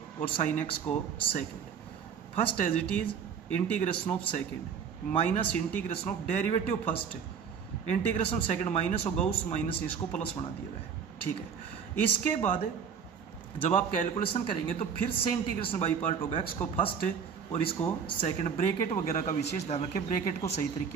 और साइन एक्स को second. First as it is integration of second minus integration of derivative first, integration of second minus होगा उस माइनस इसको प्लस बना दिया गया है, ठीक है। इसके बाद जब आप कैलकुलेशन करेंगे तो फिर से इंटीग्रेशन बाई पार्ट होगा, एक्स को फर्स्ट और इसको सेकंड। ब्रैकेट वगैरह का विशेष ध्यान रखें, ब्रैकेट को सही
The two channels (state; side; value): quieter; left; 6.9 dB